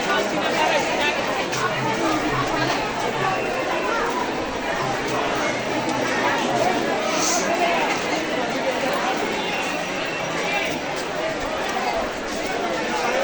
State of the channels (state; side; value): identical; both; correlation 1.00